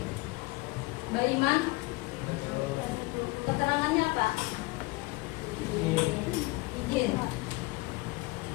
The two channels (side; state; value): right; quieter; 23.8 dB